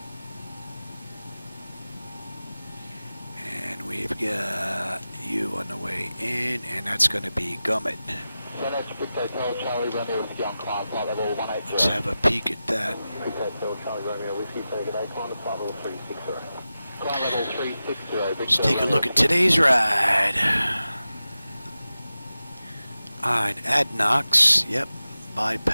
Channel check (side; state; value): both; inverted; correlation -0.94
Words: And we've got you on the way in, and that's going to be Gummit. Let's have a peek at that. Let's take a look at today's ride. Alright, Adnox, yep,